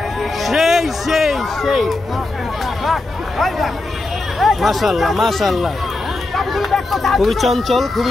সেই সেই সেই মাশাআল্লাহ মাশাআল্লাহ খুবই চঞ্চল খুবই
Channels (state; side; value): quieter; right; 3.1 dB